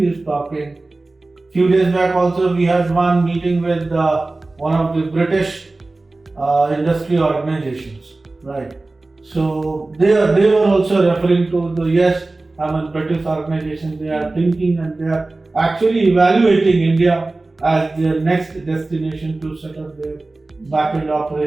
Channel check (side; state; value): left; quieter; 3.2 dB